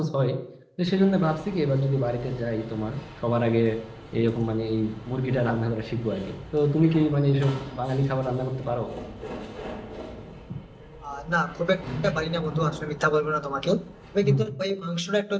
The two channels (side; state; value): both; identical; correlation 1.00